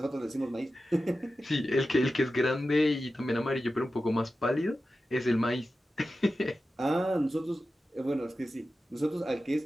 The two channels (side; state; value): both; normal; correlation 0.93